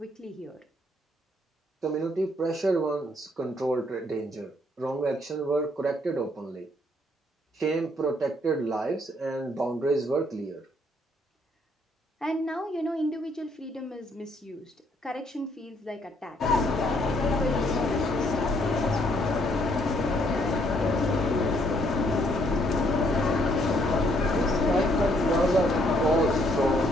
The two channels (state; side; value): normal; both; correlation 0.68